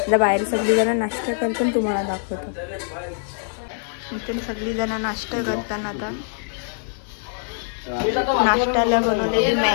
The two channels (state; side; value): silent; right; digital silence